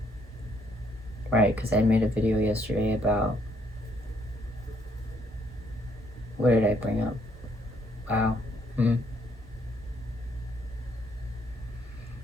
Right, because I made a video yesterday about... What did I bring up? Wow.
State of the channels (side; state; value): both; normal; correlation 0.70